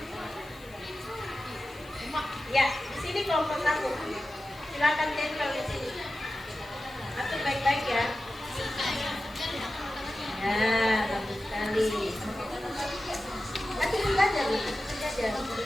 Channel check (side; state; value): left; noise; hiss, 25 dB below the sound